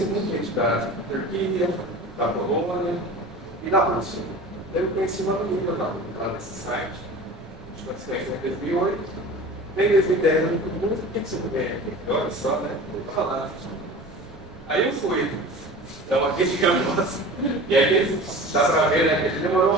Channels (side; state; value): right; noise; rumble, 27 dB below the sound